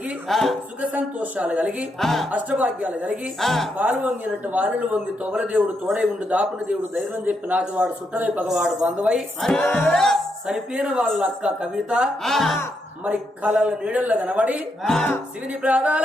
సుఖ సంతోషాలు కలిగి అష్టభాగ్యాలు కలిగి పాలు వంగినట్టు వారిని వంగి తొగల దేవుడు తోడై ఉండి దాపున దేవుడు ధైర్యం చెప్పి నాటివాడు సుట్టవై పగవాడు బంధువై చనిపోయిన వాళ్ళ అక్క కవిత మరి కళల నీడల్లో కనబడి శివుని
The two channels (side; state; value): both; normal; correlation 0.80